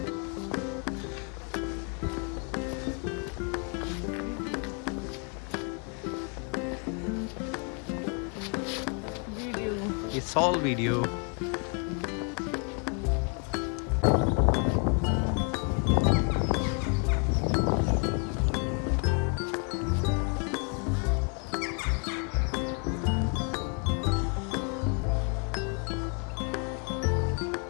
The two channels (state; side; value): quieter; right; 37.9 dB